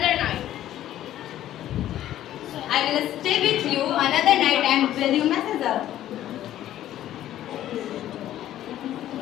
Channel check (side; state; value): right; quieter; 12.7 dB